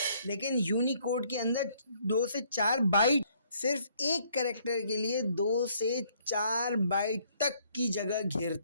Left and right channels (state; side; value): inverted; both; correlation -0.65